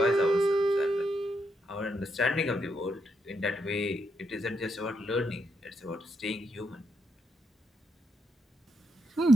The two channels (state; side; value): normal; both; correlation 0.80